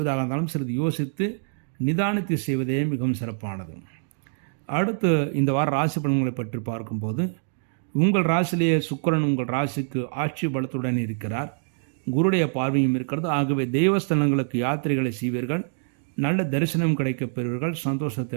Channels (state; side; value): silent; left; 62 dB below the other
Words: இருந்தாலும் சிறிது யோசித்து நிதானித்து செய்வதே மிகவும் சிறப்பானது. அடுத்து இந்த வார ராசி பலன்களை பற்றி பார்க்கும்போது உங்கள் ராசியிலேயே சுக்கிரன் உங்கள் ராசிக்கு ஆட்சி பலத்துடன் இருக்கிறார். குருடைய பார்வையும் இருக்கிறது. ஆகவே தெய்வஸ்தலங்களுக்கு யாத்திரைகளை செய்வீர்கள். நல்ல தரிசனம் கிடைக்கப் பெறுவீர்கள்,